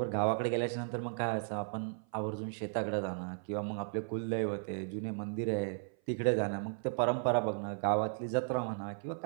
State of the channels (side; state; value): left; silent; 54 dB below the other